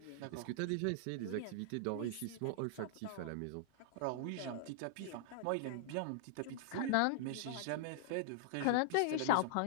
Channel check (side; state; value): both; different; correlation -0.01